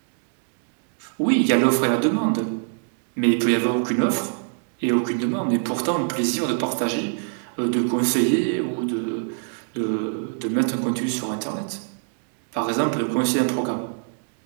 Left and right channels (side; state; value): left; silent; 63 dB below the other